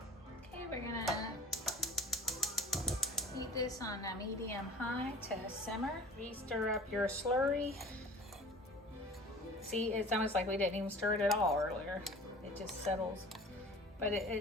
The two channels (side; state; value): both; normal; correlation 0.42